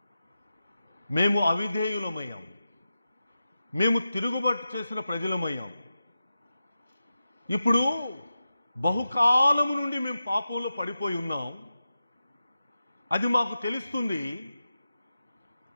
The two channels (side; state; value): both; inverted; correlation -0.92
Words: మేము అవిధేయులమయ్యాం, మేము తిరుగుబాటు చేసిన ప్రజలమయ్యాం. ఇప్పుడు బహుకాలము నుండి మేము పాపంలో పడిపోయి ఉన్నాం, అది మాకు తెలుస్తుంది.